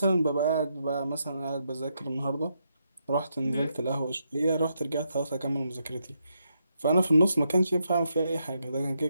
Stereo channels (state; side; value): inverted; both; correlation -0.80